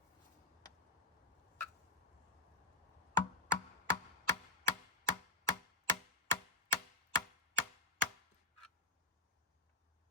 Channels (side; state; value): right; quieter; 3.6 dB